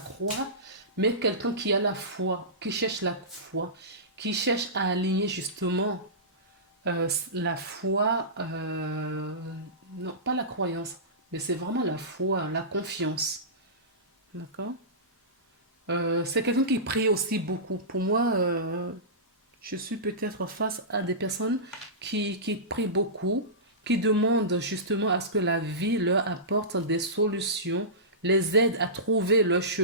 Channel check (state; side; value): normal; both; correlation -0.20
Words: mais quelqu'un qui a la foi, qui cherche la foi, qui cherche à aligner justement la foi, non, pas la croyance, mais c'est vraiment la foi, la confiance. D'accord? C'est quelqu'un qui prie aussi beaucoup. Pour moi, je suis peut-être face à des personnes qui prient beaucoup, qui demandent justement à ce que la vie leur apporte des solutions, les aide à trouver leur